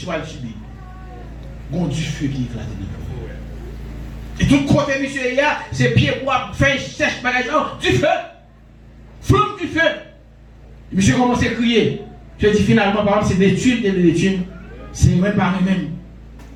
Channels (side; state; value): both; identical; correlation 1.00